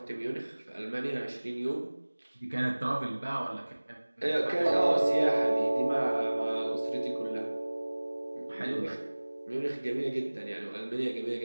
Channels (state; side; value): inverted; both; correlation -1.00